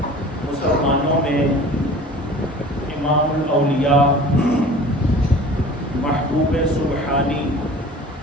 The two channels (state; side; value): normal; both; correlation 0.43